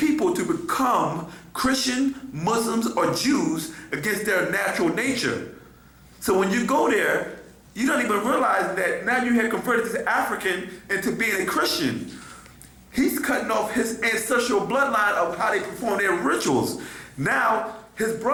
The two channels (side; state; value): both; identical; correlation 1.00